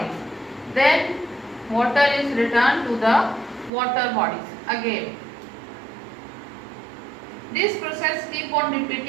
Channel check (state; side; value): drops out; left; at 3.7 s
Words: Then water is returned to the water bodies again. This process keeps on